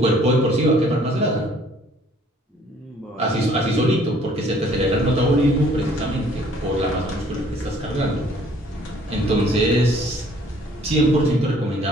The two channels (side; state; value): both; normal; correlation 0.58